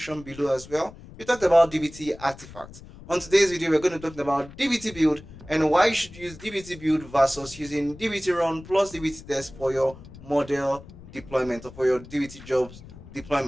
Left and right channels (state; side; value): noise; left; rumble, 18 dB below the sound